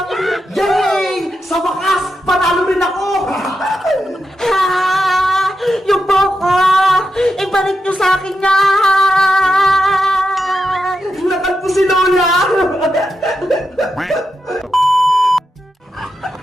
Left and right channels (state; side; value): normal; both; correlation 0.86